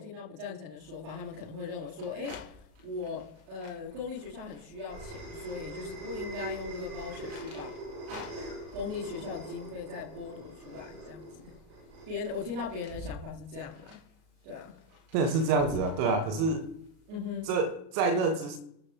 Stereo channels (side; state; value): left; late; 38 ms